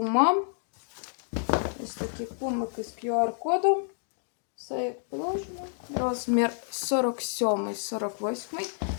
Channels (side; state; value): right; silent; digital silence